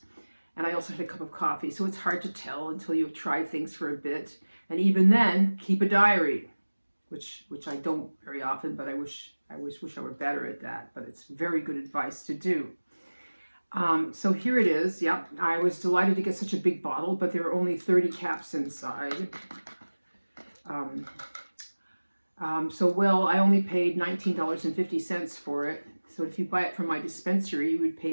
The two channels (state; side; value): inverted; both; correlation -1.00